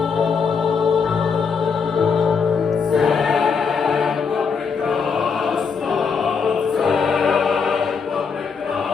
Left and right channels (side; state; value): right; quieter; 5.7 dB